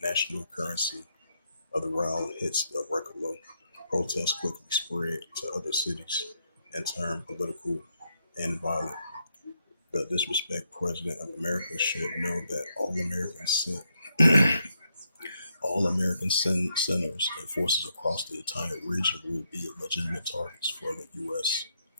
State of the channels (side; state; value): both; inverted; correlation -0.78